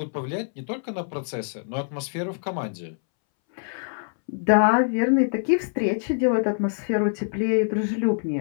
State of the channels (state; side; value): silent; right; 61 dB below the other